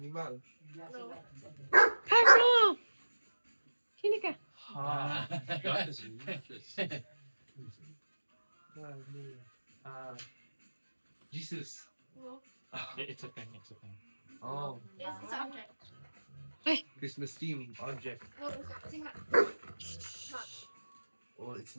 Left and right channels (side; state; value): both; inverted; correlation -1.00